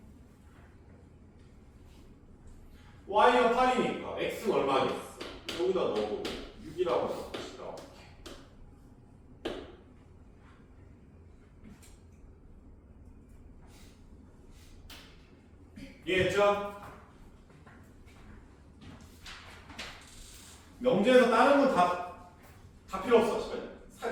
y가 8이니까 x는 얼마겠어? 여기다 넣어보면 6이라고 해서 다시 나올게. 이해했죠? 명제에서 다른 건 다 필요 없어.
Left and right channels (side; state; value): both; identical; correlation 1.00